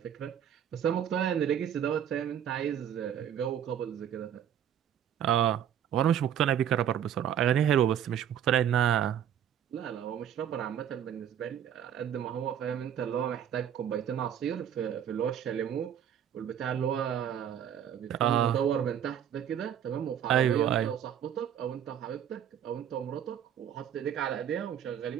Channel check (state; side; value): quieter; left; 9.6 dB